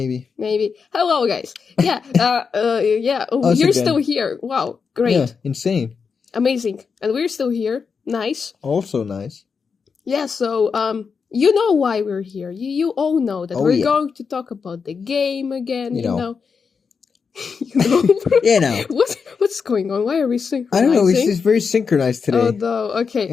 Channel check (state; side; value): quieter; right; 5.6 dB